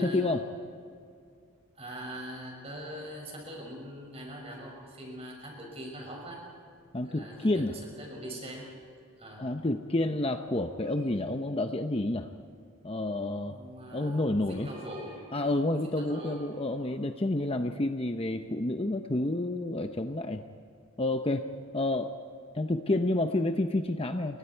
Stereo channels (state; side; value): normal; both; correlation 0.65